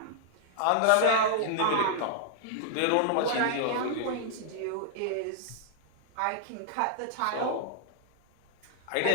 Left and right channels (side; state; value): both; different; correlation -0.01